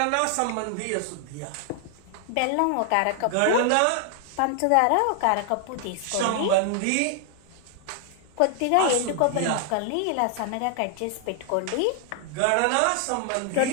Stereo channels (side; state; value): both; different; correlation 0.00